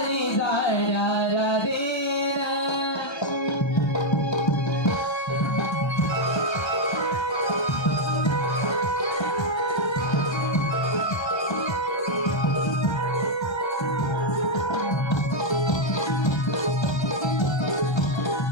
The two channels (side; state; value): right; late; 1.3 ms